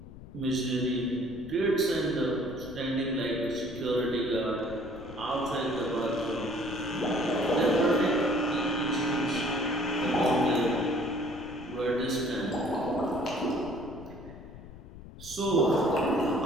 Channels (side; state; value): left; noise; rumble, 16 dB below the sound